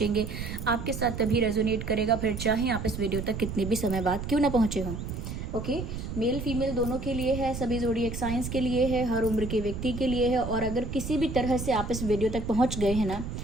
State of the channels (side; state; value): right; noise; rumble, 6 dB below the sound